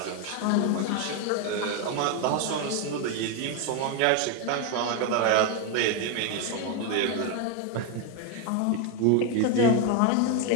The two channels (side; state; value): both; different; correlation 0.02